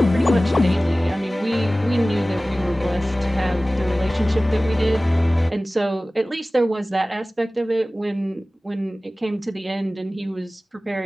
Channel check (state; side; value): normal; both; correlation 0.97